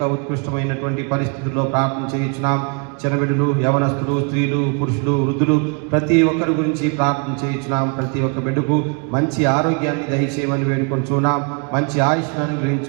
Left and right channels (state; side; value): quieter; left; 36.8 dB